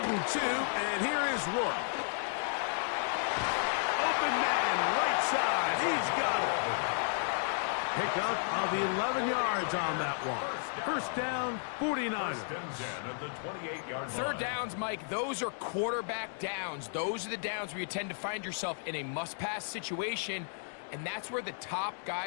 and 2, and here is Rourke. Open man, right side. He's got it. Pick up of 11 yards on that one. First down, 49ers. 3rd downs, Mike, those are quarterback downs. Those are the downs where you tend to find yourself in a must-pass situation, and that's where the top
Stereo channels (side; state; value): right; silent; digital silence